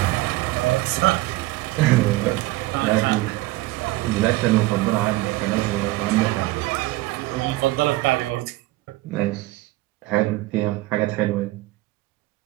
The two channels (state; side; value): quieter; left; 18.8 dB